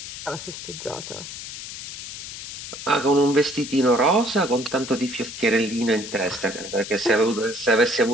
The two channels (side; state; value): left; noise; hiss, 10 dB below the sound